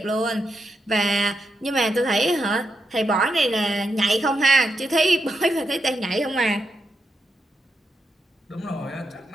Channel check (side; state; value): both; normal; correlation 0.84